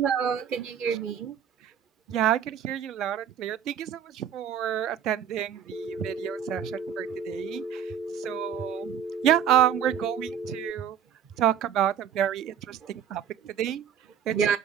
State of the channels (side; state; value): left; quieter; 8.5 dB